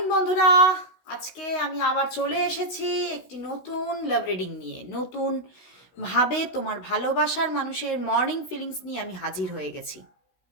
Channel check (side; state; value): right; late; 16 ms